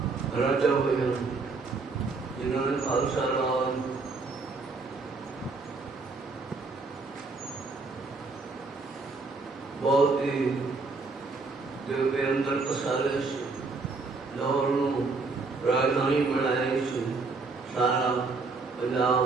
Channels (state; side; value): quieter; left; 4.0 dB